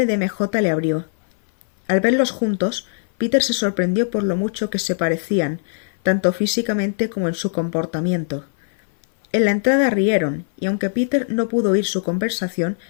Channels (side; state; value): right; silent; 57 dB below the other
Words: de MJ le abrió. Al verlos juntos, Peter se sorprendió por lo mucho que se parecían, tanto físicamente como en su comportamiento. En la entrada rieron, y aunque Peter no pudo oír su conversación,